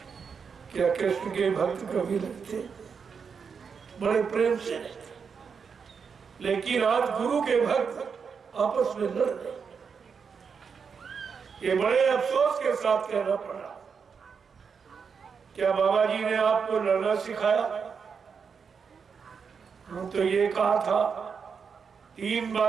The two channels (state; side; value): quieter; left; 6.1 dB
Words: क्या कृष्ण के भक्त कभी लड़ते? बड़े प्रेम से रहते। लेकिन आज गुरु के भक्त आपस में लड़ रहे। ये बड़े अफसोस के साथ कहना पड़ा। क्या बाबा जी ने आपको लड़ना सिखाया? हम तो ये कहा था, 3